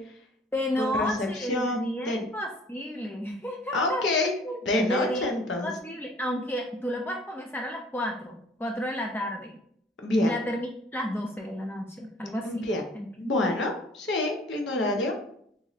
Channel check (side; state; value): both; normal; correlation 0.53